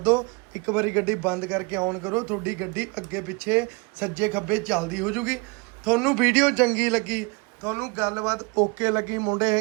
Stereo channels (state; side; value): quieter; left; 29.2 dB